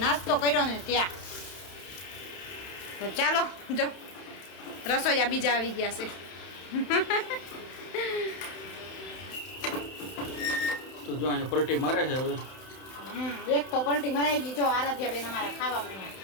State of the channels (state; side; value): late; right; 31 ms